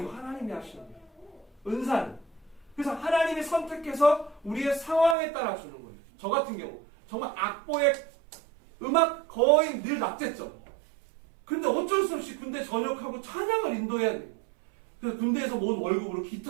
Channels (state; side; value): drops out; left; at 5.2 s